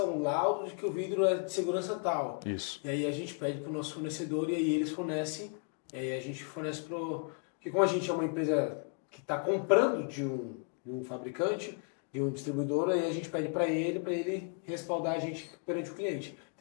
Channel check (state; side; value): quieter; right; 38.9 dB